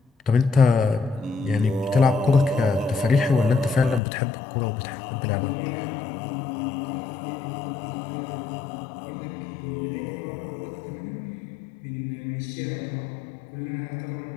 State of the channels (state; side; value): drops out; right; at 4.0 s